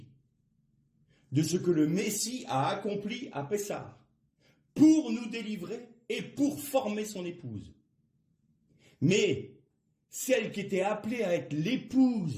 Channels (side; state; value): both; identical; correlation 1.00